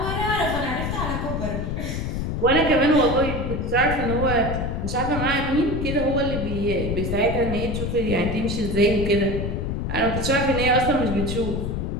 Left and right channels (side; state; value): left; noise; rumble, 2 dB below the sound